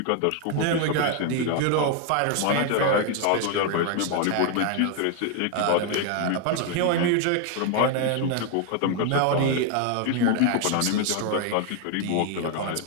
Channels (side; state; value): both; different; correlation 0.00